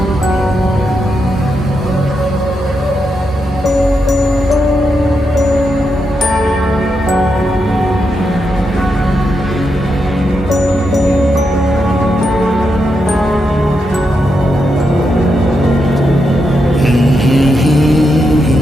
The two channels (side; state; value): both; normal; correlation 0.84